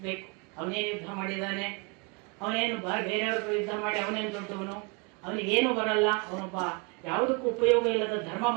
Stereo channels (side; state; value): left; quieter; 31.6 dB